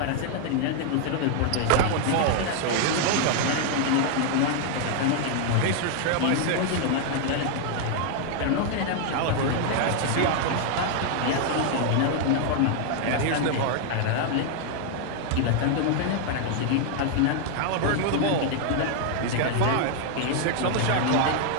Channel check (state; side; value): different; both; correlation 0.00